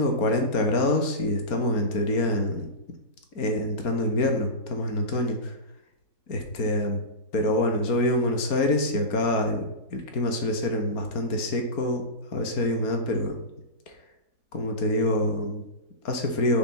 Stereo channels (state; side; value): late; right; 4.3 ms